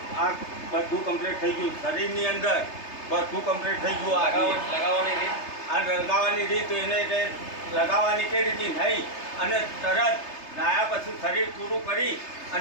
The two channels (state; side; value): late; right; 3.3 ms